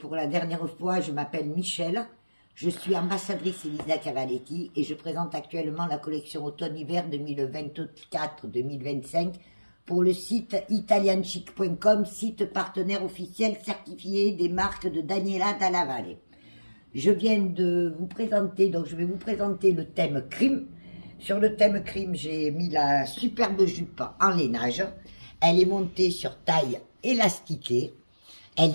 la dernière fois, je m'appelle Michel, je suis ambassadrice Elisa Cavaletti et je présente actuellement la collection automne-hiver 2024-2025 pour le site italianchic.com, site partenaire officiel certifié des marques de Daniela Dalla Valle. Je viens de vous présenter, donc je vais vous présenter le thème crime. Sur le thème crime, j'ai mis la superbe jupe en lainage. Elle est montée sur taille élastiquée.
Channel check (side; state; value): both; inverted; correlation -1.00